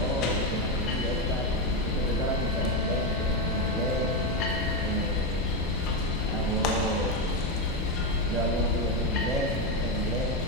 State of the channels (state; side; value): normal; both; correlation 0.09